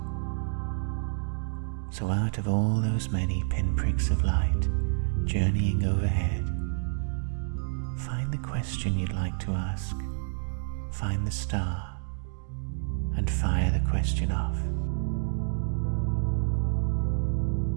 So out of all those many pinpricks of light journeying overhead, find the question you'd like to ask, find the star, and fire the question off.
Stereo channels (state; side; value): silent; left; digital silence